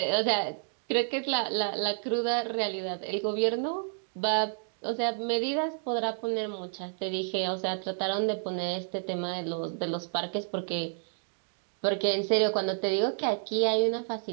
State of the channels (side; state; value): left; silent; digital silence